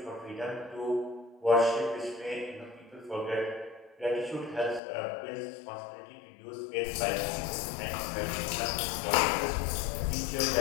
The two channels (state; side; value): drops out; right; at 4.8 s